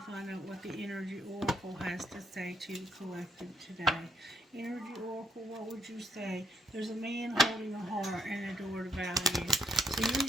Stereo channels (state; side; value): normal; both; correlation 0.73